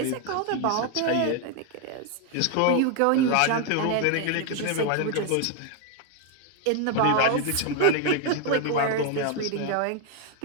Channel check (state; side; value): different; both; correlation 0.01